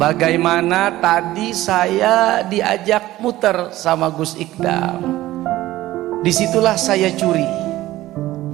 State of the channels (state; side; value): quieter; left; 16.0 dB